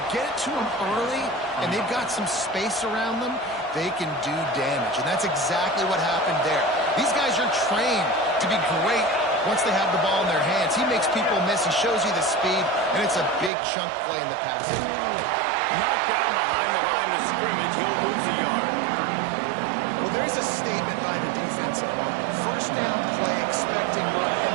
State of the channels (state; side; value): drops out; left; at 13.5 s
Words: get it to them early and they've got some space around them, they can do damage. And that's exactly what happened there. These guys are trained to be great once they have the ball in their hands. He makes people miss. He shows you the speed, and it's a big chunk play in the passing. Knocked down behind the line of scrimmage. He'll lose a yard. Well, there's a statement by the defense. First down play, expecting run, and